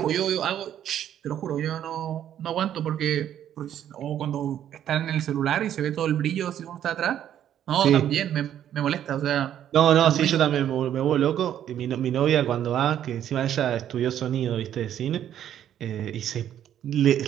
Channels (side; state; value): left; quieter; 10.5 dB